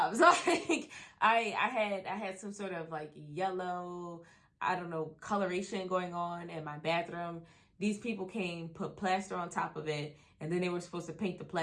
Like I had some sort of like yellow, I don't know, coloration going on in my bathroom. These people came, put plaster on top of it, and then they were supposed to paint the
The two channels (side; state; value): both; identical; correlation 1.00